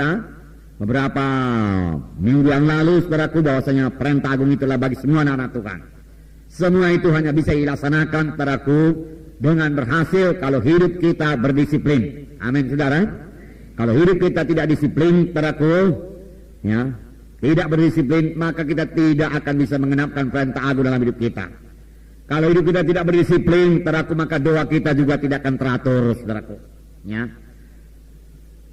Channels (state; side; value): identical; both; correlation 1.00